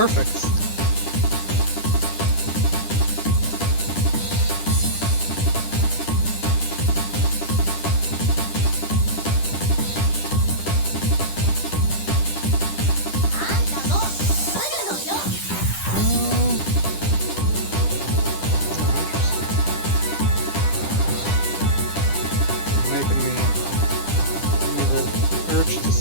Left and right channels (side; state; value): right; late; 10 ms